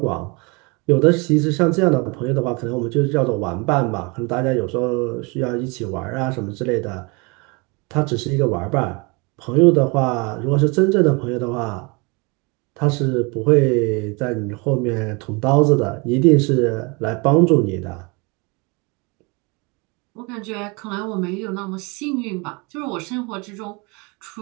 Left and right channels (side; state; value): left; quieter; 29.1 dB